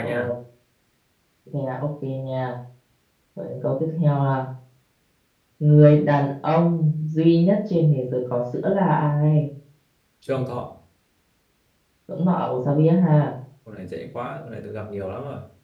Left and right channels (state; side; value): identical; both; correlation 1.00